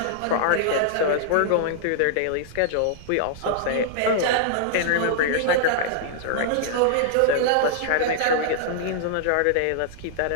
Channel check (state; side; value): different; both; correlation -0.01